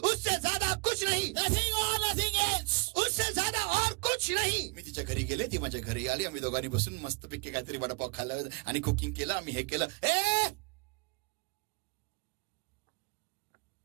उससे ज्यादा कुछ नहीं. Nothing or nothing else. उससे ज्यादा और कुछ नहीं. मी तिच्या घरी गेले, ती माझ्या घरी आली, आम्ही दोघांनी बसून मस्तपैकी काहीतरी वडापाव खाल्ला आणि कुकिंग केलं, आम्ही हे केलं.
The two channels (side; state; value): left; quieter; 29.5 dB